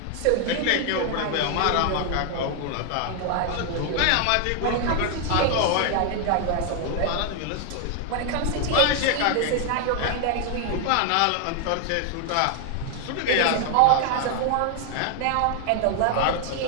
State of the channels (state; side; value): different; both; correlation 0.00